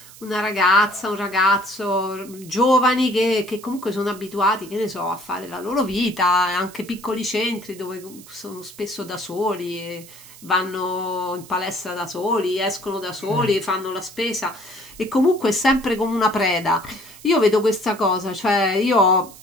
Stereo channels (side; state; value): right; noise; hiss, 19 dB below the sound